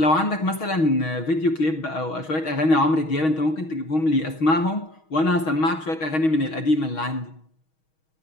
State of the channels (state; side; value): late; right; 6.3 ms